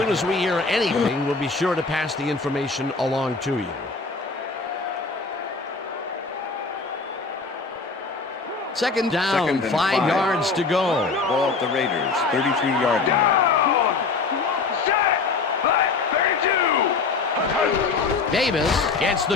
as we hear anything, we'll be sure to pass the information along to you. Second down, 5 yards to go. Ball at the Raiders, 33-yard line. Davis gets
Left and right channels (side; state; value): right; quieter; 4.2 dB